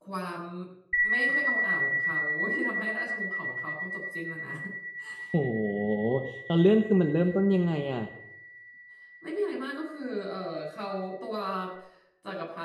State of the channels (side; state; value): both; identical; correlation 1.00